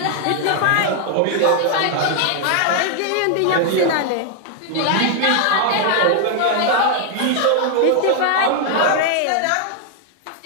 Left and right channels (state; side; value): different; both; correlation 0.00